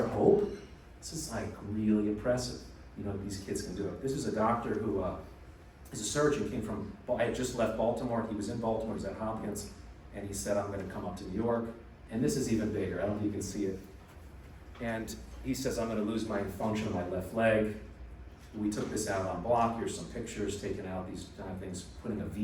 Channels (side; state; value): both; identical; correlation 1.00